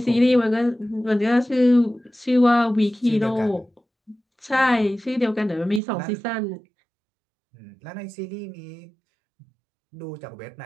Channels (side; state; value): left; drops out; at 5.8 s